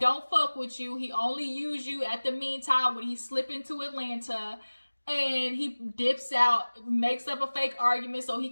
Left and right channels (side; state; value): both; inverted; correlation -1.00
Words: fuck with you. He only use you at the meantime when he slip into Atlanta. And he dips out, makes up a fake argument so he